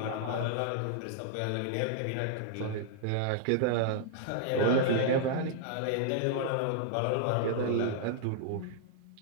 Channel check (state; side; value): different; both; correlation -0.01